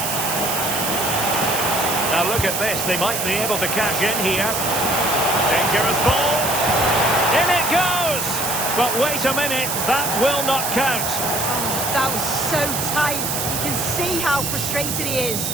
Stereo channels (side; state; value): right; noise; hiss, 2 dB below the sound